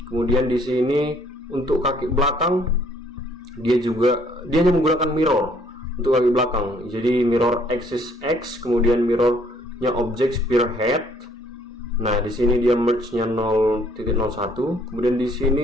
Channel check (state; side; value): normal; both; correlation 0.63